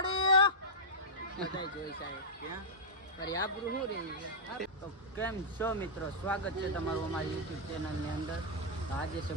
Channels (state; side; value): normal; both; correlation -0.07